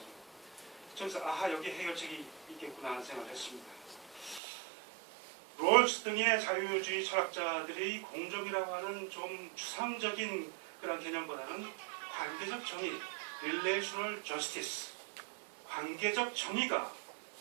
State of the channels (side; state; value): left; drops out; at 4.4 s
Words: 그래서 여기 해결책이 있겠구나 하는 생각을 했습니다. 롤스 등의 자유주의 철학자들이 공정이라고 하는 좀 추상적인 그런 개념보다는 관계적 정의, relational justice, 관계적 정의가